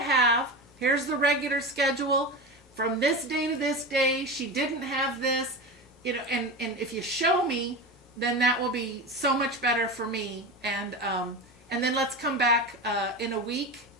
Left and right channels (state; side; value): normal; both; correlation 0.25